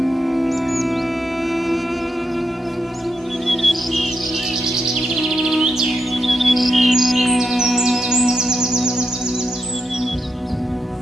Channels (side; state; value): both; normal; correlation 0.84